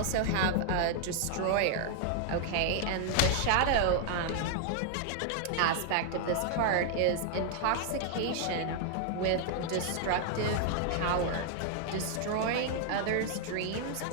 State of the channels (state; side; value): different; both; correlation 0.00